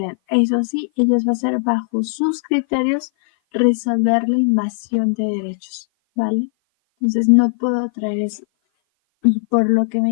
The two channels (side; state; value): right; silent; 57 dB below the other